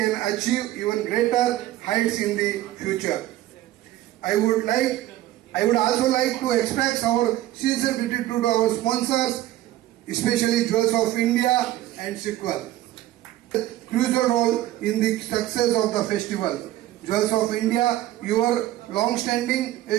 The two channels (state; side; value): quieter; left; 14.8 dB